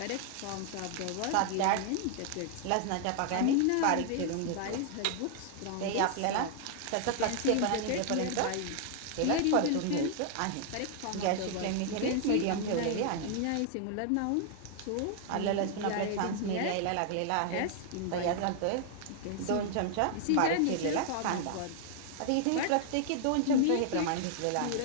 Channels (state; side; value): different; both; correlation 0.00